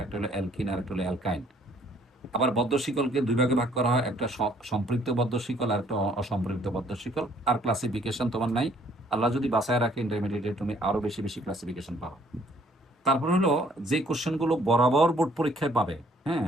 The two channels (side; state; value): both; normal; correlation 0.62